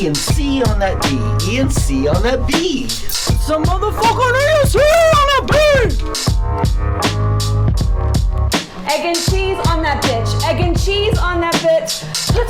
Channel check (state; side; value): identical; both; correlation 1.00